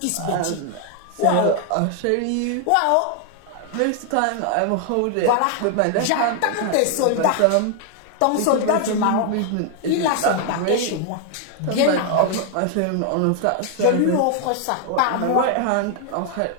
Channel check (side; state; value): both; different; correlation 0.00